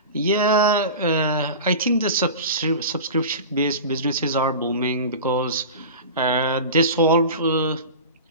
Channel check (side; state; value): both; inverted; correlation -0.31